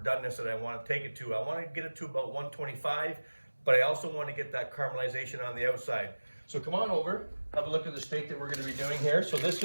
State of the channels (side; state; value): both; inverted; correlation -1.00